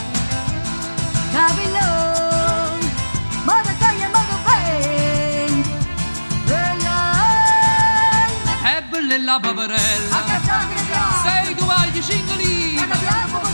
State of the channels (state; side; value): inverted; both; correlation -1.00